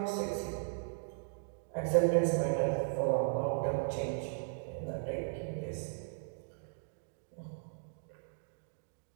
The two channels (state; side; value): silent; left; digital silence